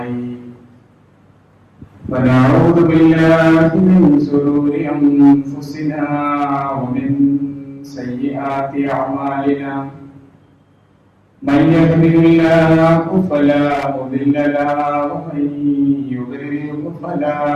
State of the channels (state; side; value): identical; both; correlation 1.00